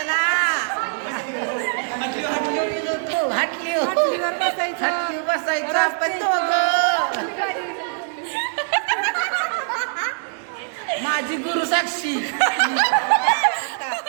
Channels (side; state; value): left; silent; digital silence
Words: हटली बसायचं आपण दोघं. माझी गुरु साक्षी,